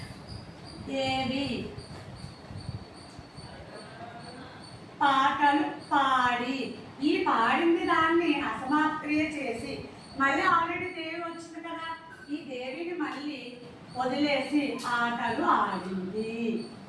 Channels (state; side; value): identical; both; correlation 1.00